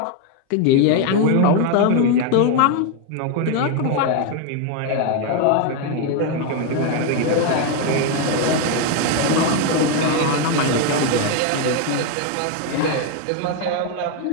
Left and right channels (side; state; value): both; different; correlation 0.01